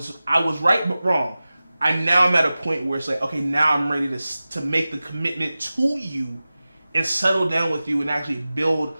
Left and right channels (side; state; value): both; inverted; correlation -0.96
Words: right but wrong. I'm at a point where it's like, okay, now I'm ready to make the commitment to you and settle down with you and actually build